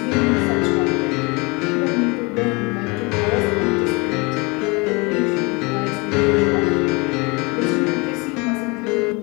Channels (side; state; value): right; quieter; 27.5 dB